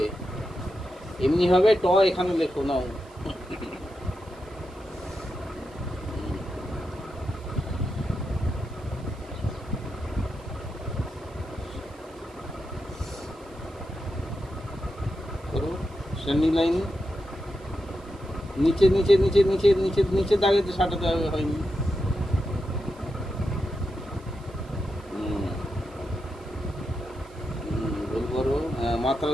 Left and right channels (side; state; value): right; noise; hiss, 28 dB below the sound